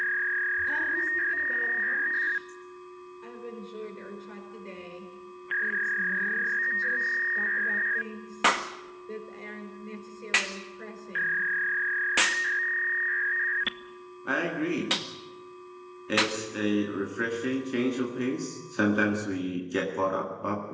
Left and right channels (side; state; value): both; identical; correlation 1.00